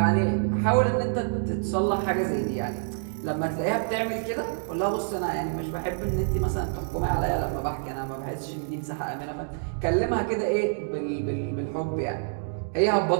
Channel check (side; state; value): left; silent; digital silence